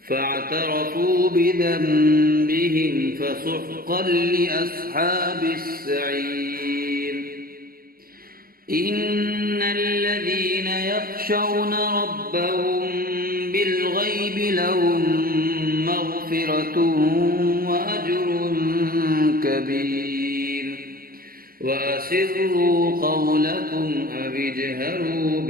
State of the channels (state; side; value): late; left; 0.42 ms